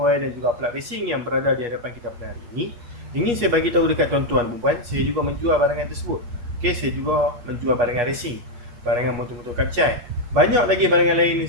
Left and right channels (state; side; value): late; left; 8.3 ms